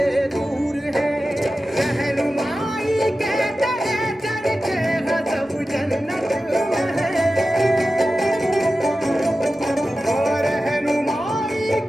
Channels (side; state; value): both; normal; correlation 0.93